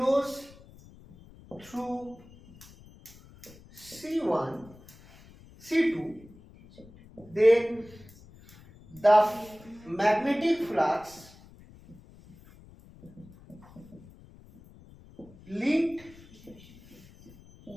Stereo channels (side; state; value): left; noise; rumble, 22 dB below the sound